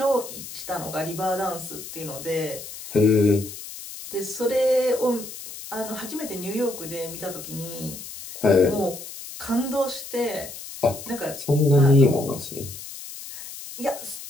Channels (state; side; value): noise; left; hiss, 12 dB below the sound